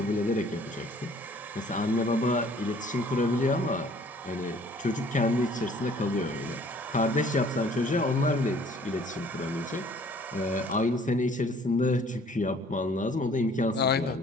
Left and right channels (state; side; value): normal; both; correlation 0.56